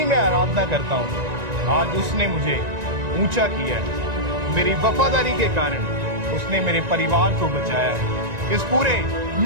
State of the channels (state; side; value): late; left; 1.9 ms